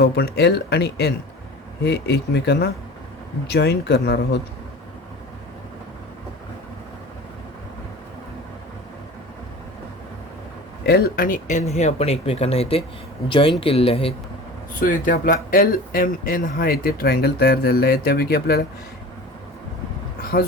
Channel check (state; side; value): normal; both; correlation 0.37